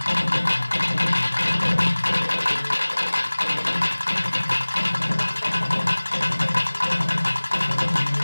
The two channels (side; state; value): both; inverted; correlation -1.00